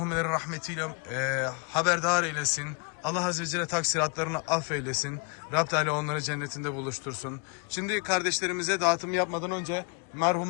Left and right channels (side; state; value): right; quieter; 32.7 dB